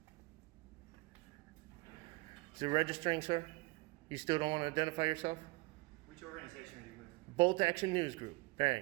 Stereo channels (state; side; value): quieter; left; 24.0 dB